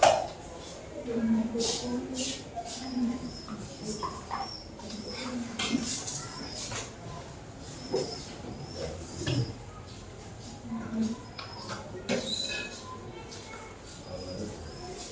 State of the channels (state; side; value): identical; both; correlation 1.00